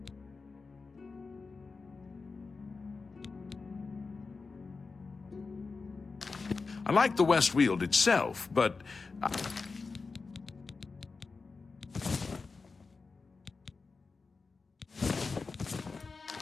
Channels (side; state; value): right; quieter; 4.3 dB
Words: I like the West Weald itself, but...